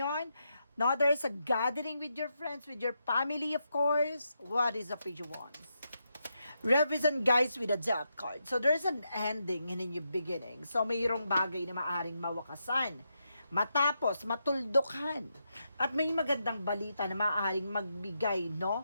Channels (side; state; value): both; inverted; correlation -0.84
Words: No, there's a gathering with your friends, with your family, of course. What is a Page of Wands? Represent, guys, with a Death card. So, there's an ending and a new beginning. So, mayroong bagay na maaring mawakasan, matapos, matuldukan. At may magandang balita na maaaring magbigay, no,